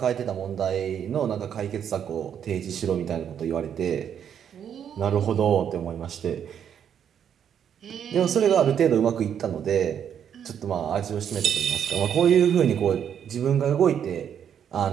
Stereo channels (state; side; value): quieter; left; 8.7 dB